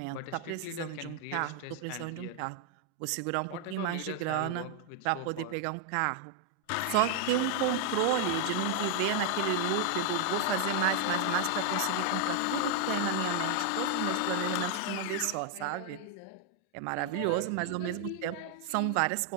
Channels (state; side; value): different; both; correlation 0.00